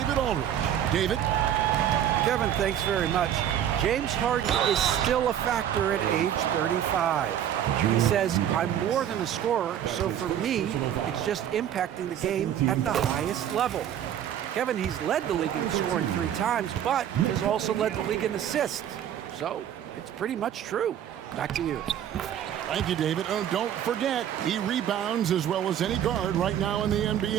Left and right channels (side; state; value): left; quieter; 10.2 dB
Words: Aldridge. David? Kevin, thanks very much. James Harden is still a factor at age 35. He says, I'm more than a scorer, so for me, it's just impacting the game at the highest level. Kevin, he's led the league in scoring 3 times, but has also led the league in assists. So it's pretty much true. Back to you. Thank you, David. Oh, don't forget, he rebounds as well as any guard right now in the